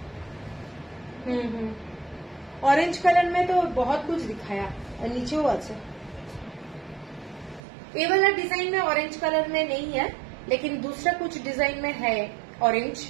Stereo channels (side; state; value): left; drops out; at 7.6 s